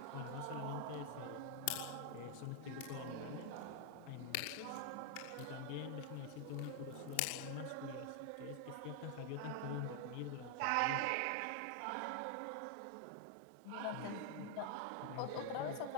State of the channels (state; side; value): different; both; correlation 0.00